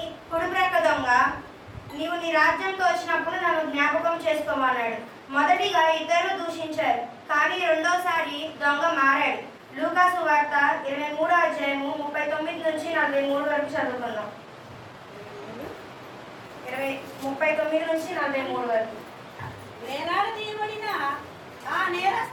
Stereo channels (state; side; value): identical; both; correlation 1.00